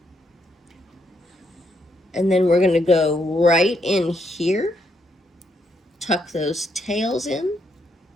And then we're going to go right in here, tuck those tails in.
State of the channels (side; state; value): both; normal; correlation 0.76